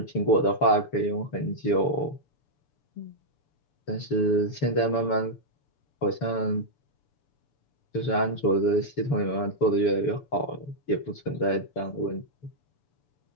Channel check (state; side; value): late; right; 6.9 ms